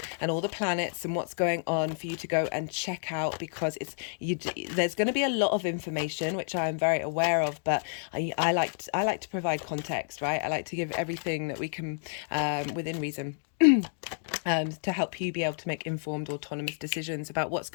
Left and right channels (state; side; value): silent; right; digital silence